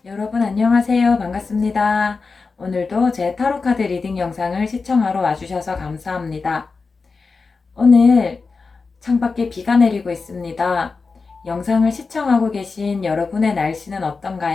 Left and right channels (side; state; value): right; quieter; 4.4 dB